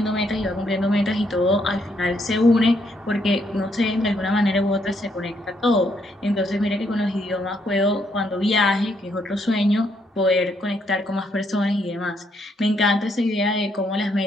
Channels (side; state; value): both; normal; correlation 0.73